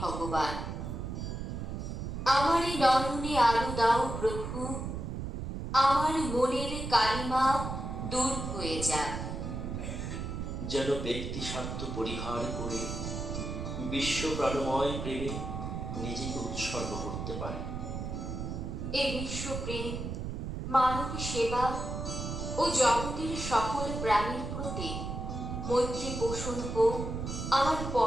আমার এই নয়নে আলো দাও প্রভু। আমার মনের কালিমা দূর হয়ে যাক। যেন ব্যক্তি স্বার্থ পরিহার করে বিশ্ব প্রাণময় প্রেমে নিজেকে উৎসর্গ করতে পারে। এই বিশ্বপ্রেম, মানব সেবা ও জগতের সকল প্রাণীর প্রতি মৈত্রী পোষণ হোক আমার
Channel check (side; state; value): right; noise; rumble, 5 dB below the sound